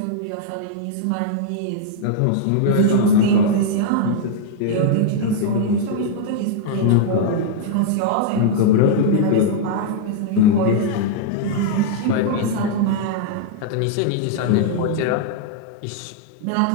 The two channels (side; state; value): both; different; correlation -0.01